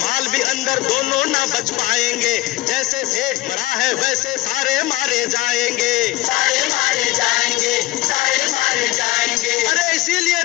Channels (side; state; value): right; quieter; 18.8 dB